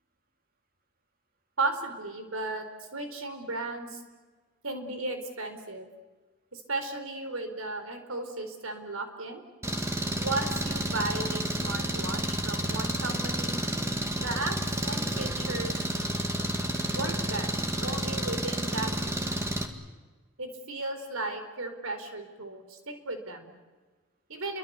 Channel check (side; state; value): both; normal; correlation 0.22